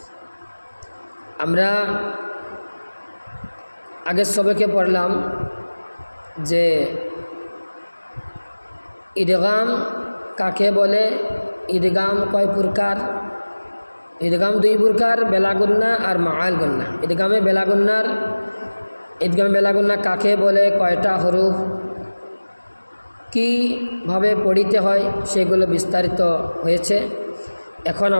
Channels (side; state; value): both; inverted; correlation -1.00